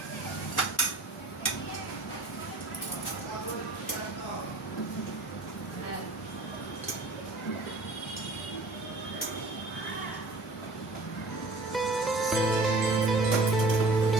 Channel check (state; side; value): quieter; left; 3.1 dB